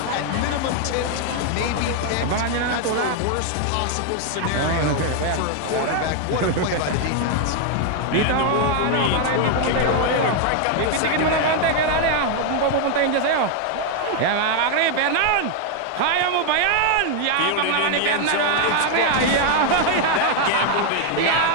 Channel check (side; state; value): both; different; correlation 0.00